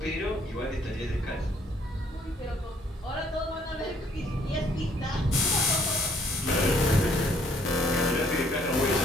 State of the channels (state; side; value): normal; both; correlation 0.64